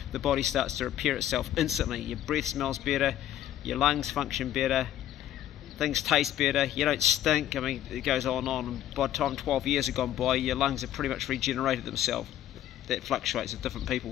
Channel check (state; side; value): quieter; right; 12.0 dB